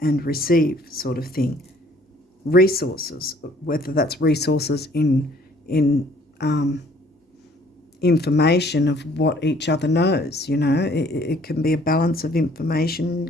and receive sort of thing. Resources, whether that's resources in information of what each other knows, it can be a balance of information,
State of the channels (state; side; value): normal; both; correlation 0.59